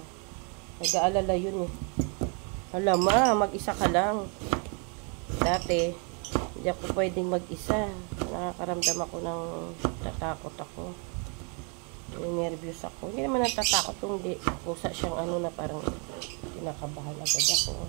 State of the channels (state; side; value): quieter; left; 36.5 dB